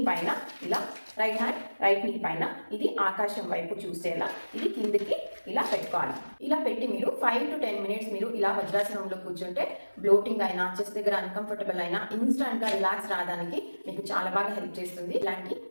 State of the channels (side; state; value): both; inverted; correlation -1.00